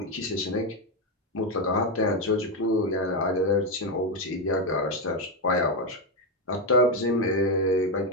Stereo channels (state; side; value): normal; both; correlation 0.06